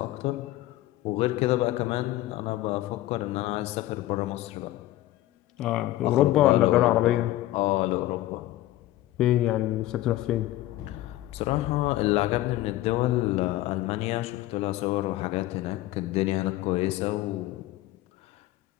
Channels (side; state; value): right; quieter; 15.8 dB